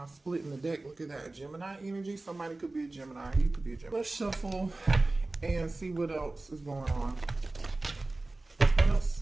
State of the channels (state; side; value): quieter; left; 3.0 dB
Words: splitting the deck. Look at that. Gemini energy. Somebody could be a Gemini. You could be a Gemini. Let's shuffle and see what else is going on.